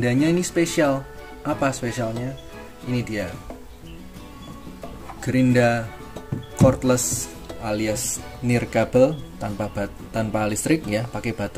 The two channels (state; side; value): identical; both; correlation 1.00